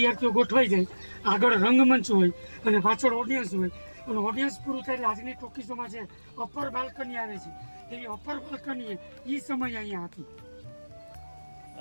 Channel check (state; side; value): inverted; both; correlation -1.00